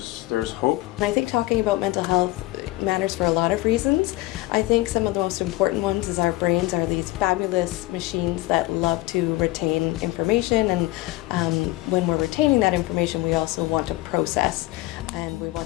hope. I think talking about mental health matters for a lot of reasons. I think some of the most important ones is our brains are these fabulous machines that love to retain information, and when we're retaining that information we also want to process and we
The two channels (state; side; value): quieter; right; 19.3 dB